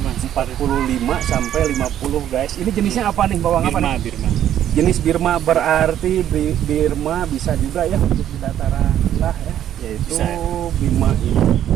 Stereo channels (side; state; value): left; quieter; 11.0 dB